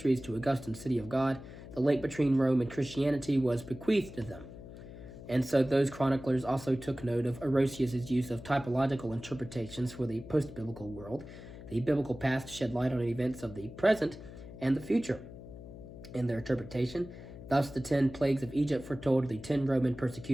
to Augustine's City of God, the link between Rome and Christianity was bequeathed to them. And so those chroniclers also took note of Orosius's use of typological interpretations for the post-biblical world. The biblical past shed light on events of the present and the future in their interpretation. Thus, the 10 plagues of Egypt foretold the 10 Roman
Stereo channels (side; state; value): left; noise; hum, 14 dB below the sound